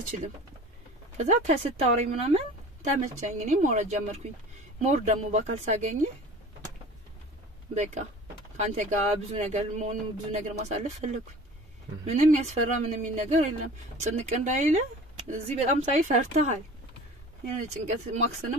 ከዛ ከስታወራኝ ምናምን ተመቸኝ እኔ ሞራጅ ጀመርኩኝ ሞር ደግሞ በአካል ሳገኝ በቃ ካንተ ጋር ብዙ ነገር ማሳለፍ ፈለኩኝ ምንም ያስፈራ ምንም ነገር የለም ጭንቅ እንዳይለ እዚህ በጣም ሳይ ፈርተሃል የኔ ጭንቀት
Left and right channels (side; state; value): both; normal; correlation 0.42